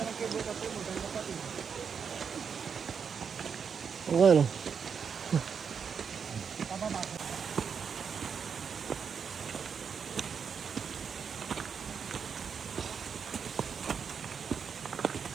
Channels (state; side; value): quieter; left; 6.5 dB